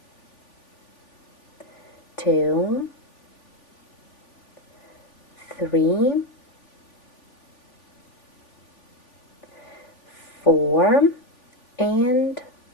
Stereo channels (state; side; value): late; right; 3.5 ms